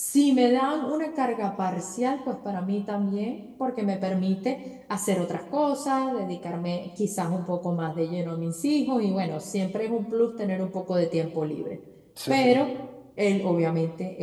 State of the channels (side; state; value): both; identical; correlation 1.00